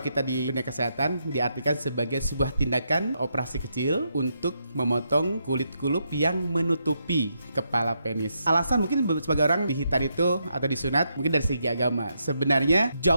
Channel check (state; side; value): inverted; both; correlation -0.80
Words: kita di dunia kesehatan diartikan sebagai sebuah tindakan operasi kecil untuk memotong kulit kulup yang menutupi kepala penis. Alasan mungkin sebagai orang dihitan itu atau disunat mungkin dari segi agama. Sebenarnya